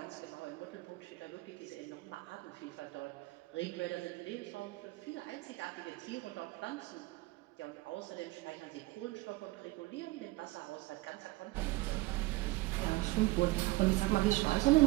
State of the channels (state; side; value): quieter; left; 20.6 dB